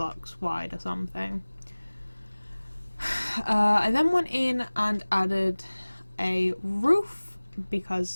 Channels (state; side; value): inverted; both; correlation -1.00